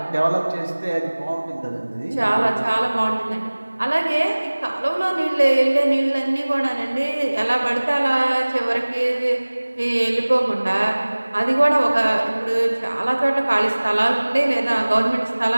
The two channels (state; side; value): inverted; both; correlation -1.00